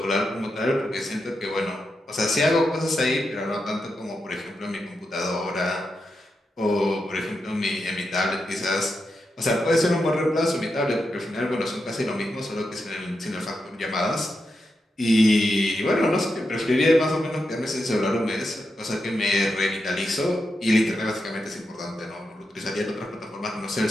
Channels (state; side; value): normal; both; correlation 0.87